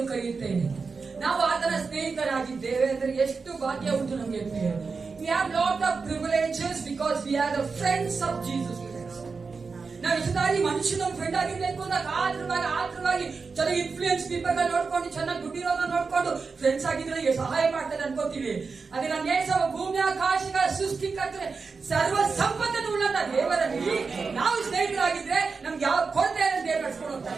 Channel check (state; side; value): quieter; left; 4.7 dB